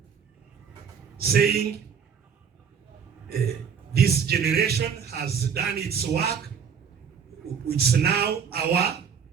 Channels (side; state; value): left; quieter; 7.1 dB